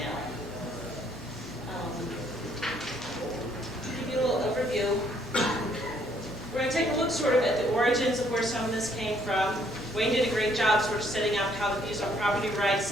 Give you a little overview. We're going to take a look sort of at the origins of where some of this came from. Wayne did a great job sort of setting out how the views on property rights,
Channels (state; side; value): normal; both; correlation 0.66